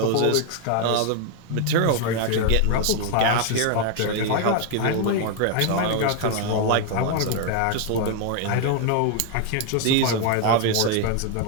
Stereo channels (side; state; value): both; different; correlation 0.00